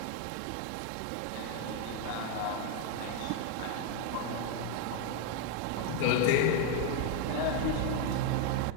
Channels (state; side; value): different; both; correlation 0.01